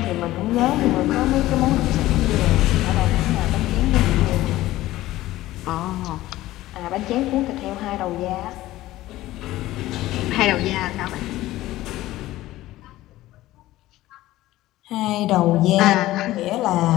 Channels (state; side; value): quieter; right; 16.2 dB